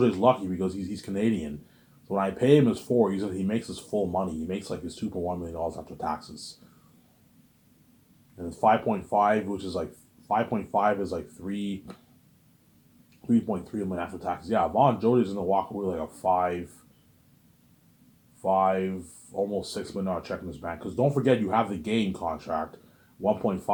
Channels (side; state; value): both; identical; correlation 1.00